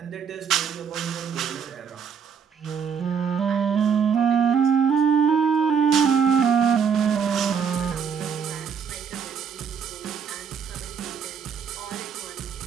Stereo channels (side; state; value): left; quieter; 6.8 dB